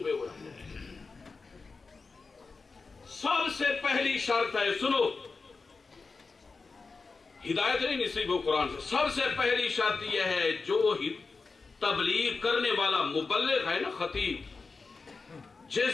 ہوئے ہیں. سب سے پہلی شرط ہے، سنو، ہدایت نہیں نصیب ہو قرآن سے. سب سے پہلی شرط یہ ہے، جو تبلیغ کرنے والا مبلغ ہے نا، خطیب،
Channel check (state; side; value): quieter; right; 4.3 dB